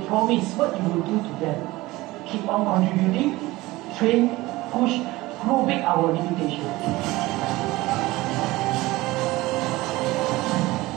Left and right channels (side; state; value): left; quieter; 19.5 dB